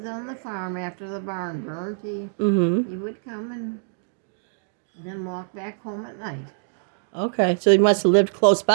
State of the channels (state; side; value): silent; left; digital silence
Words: on the farm after the barn burned. He would come and then walk back home at night. Okay, so he must have lived close